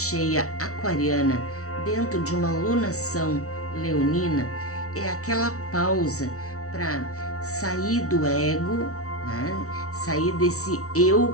aquariana, dentro de uma lunação leonina, é aquela pausa para sair do ego, né? Sair desse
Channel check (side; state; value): right; late; 0.64 ms